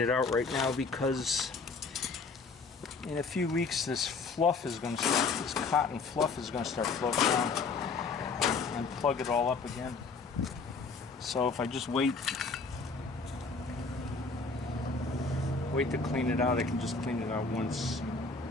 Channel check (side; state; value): right; quieter; 4.3 dB